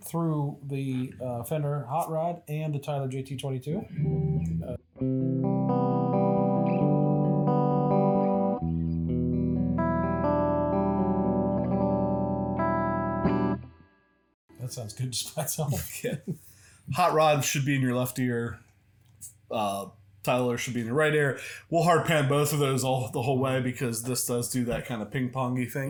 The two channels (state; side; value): identical; both; correlation 1.00